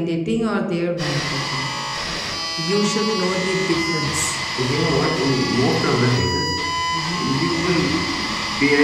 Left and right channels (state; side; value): identical; both; correlation 1.00